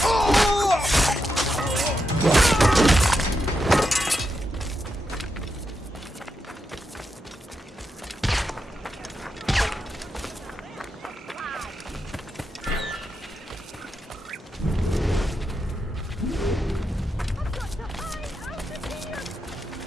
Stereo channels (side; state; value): both; normal; correlation 0.85